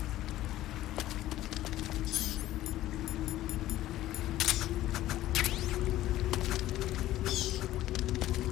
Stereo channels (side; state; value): right; quieter; 14.7 dB